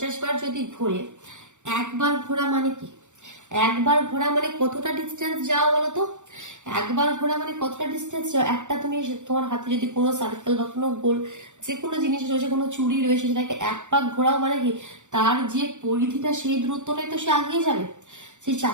বার যদি ঘোরে, একবার ঘোরা মানে কি? একবার ঘোরা মানে কতটা ডিস্টেন্স যাও বলতো? একবার ঘোরা মানে কতটা ডিস্টেন্স যাও? একটা তুমি তোমার হাতে যদি কোনো সার্কেল বা কোনো গোল যে কোনো জিনিস রয়েছে, কোনো চুড়ি রয়েছে, সেটাকে এক পাক ঘোরাও মানে কি তার যে পরিধিটা সেই দূরত্বটাই তো সে আগিয়ে যাবে, সেই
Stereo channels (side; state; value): left; late; 0.85 ms